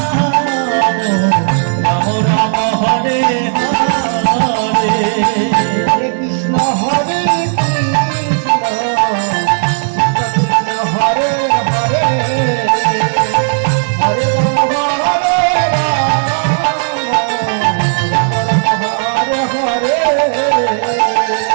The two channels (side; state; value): left; silent; digital silence